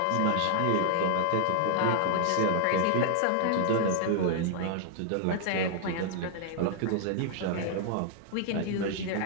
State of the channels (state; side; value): different; both; correlation 0.00